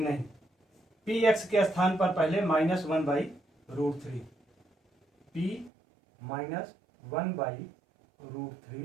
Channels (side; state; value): left; drops out; at 5.7 s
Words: नहीं। पी एक्स के स्थान पर पहले -1 बाई √3, पी -1 बाई